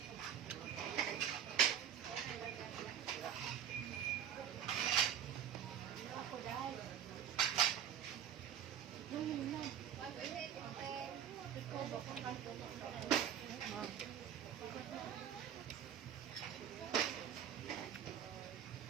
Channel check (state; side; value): quieter; left; 9.3 dB